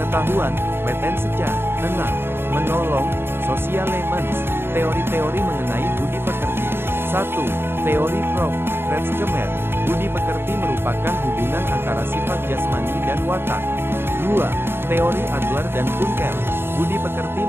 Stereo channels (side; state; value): left; late; 0.11 ms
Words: wetenschap. 6. Menolong, socialemens. Teori-teori mengenai budi pekerti. 1. Teori Prof. Kretschmer. Budi pekerti merupakan hubungan antara sifat jasmani dan watak. 2. Teori Adler dan Kunkel. Budi pekerti